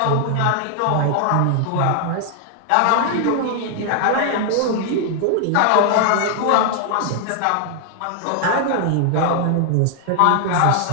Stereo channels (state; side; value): different; both; correlation 0.00